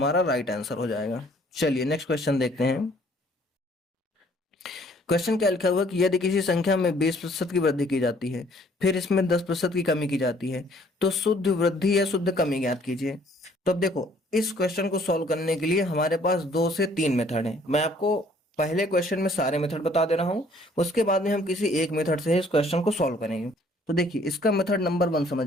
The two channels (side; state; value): both; normal; correlation 0.60